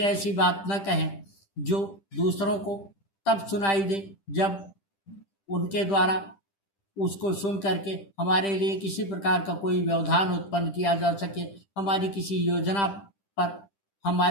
बात न कहें जो दूसरों को तब सुनाई दे जब उनके द्वारा उसको सुन करके हमारे लिए किसी प्रकार का कोई व्यवधान उत्पन्न किया जा सके, हमारी किसी योजना पर,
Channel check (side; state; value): right; late; 10 ms